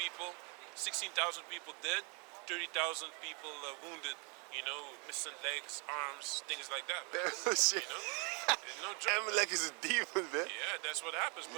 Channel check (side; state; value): left; quieter; 33.4 dB